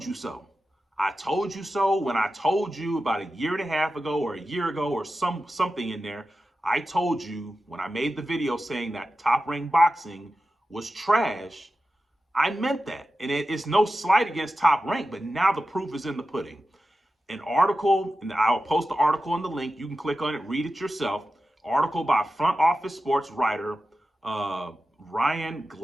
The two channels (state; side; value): normal; both; correlation 0.92